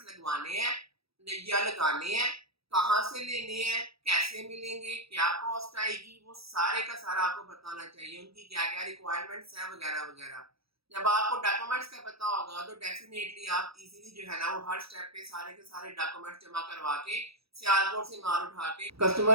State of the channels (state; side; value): late; left; 0.77 ms